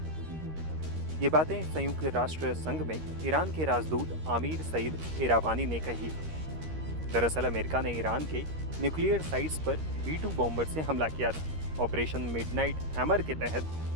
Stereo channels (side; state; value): left; late; 13 ms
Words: ये बातें संयुक्त राष्ट्र संघ में ईरान के राजदूत आमिर सईद इरावानी ने कही। दरअसल अमेरिका ने ईरान के न्यूक्लियर साइट्स पर B-2 बॉम्बर से हमला किया था। ऑपरेशन मिडनाइट हैमर के तहत